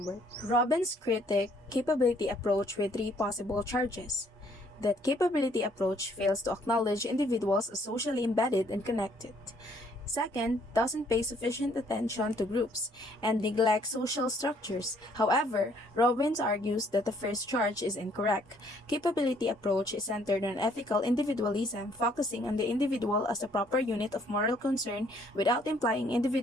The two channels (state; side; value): normal; both; correlation 0.64